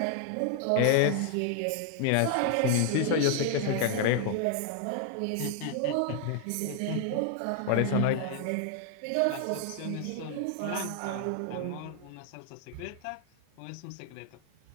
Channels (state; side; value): different; both; correlation 0.00